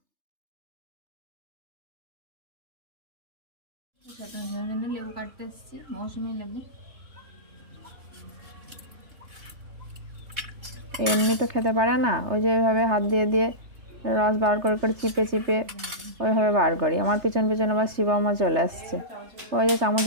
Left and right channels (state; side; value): late; left; 3.3 ms